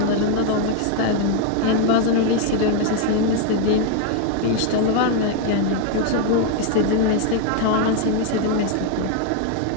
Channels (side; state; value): both; different; correlation 0.00